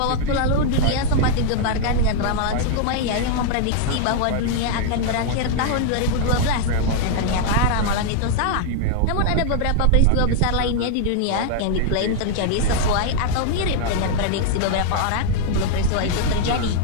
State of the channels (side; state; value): both; different; correlation -0.01